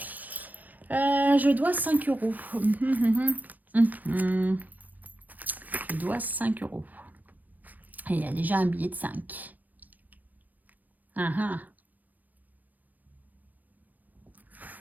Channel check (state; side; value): late; left; 0.082 ms